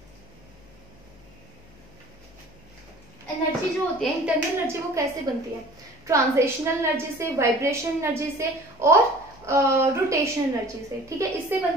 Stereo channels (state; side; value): noise; left; hum, 26 dB below the sound